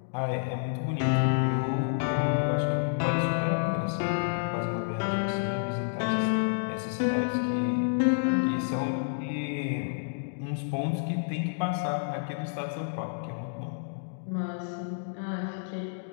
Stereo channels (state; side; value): silent; right; digital silence